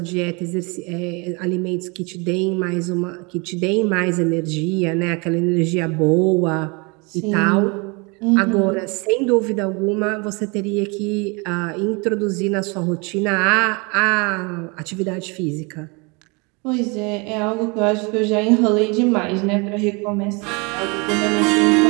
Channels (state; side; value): quieter; left; 29.7 dB